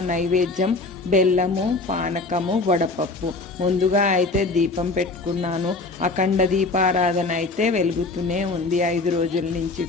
నైవేద్యం బెల్లము, పానకము, వడపప్పు. ముందుగా అయితే దీపం పెట్టుకున్నాను. అఖండ దీపారాధన అయితే వెలుగుతూనే ఉంది 5 రోజుల నుంచి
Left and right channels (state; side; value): quieter; right; 3.5 dB